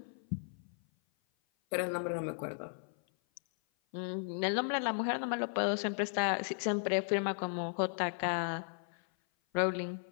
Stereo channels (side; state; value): right; silent; 54 dB below the other